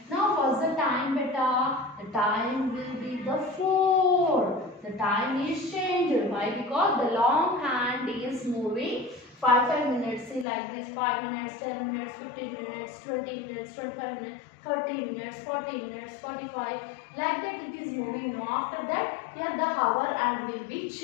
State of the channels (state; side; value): drops out; right; at 10.5 s